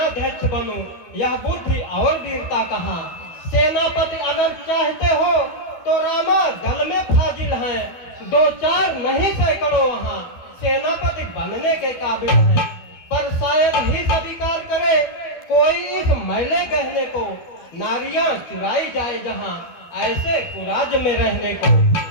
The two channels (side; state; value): right; late; 12 ms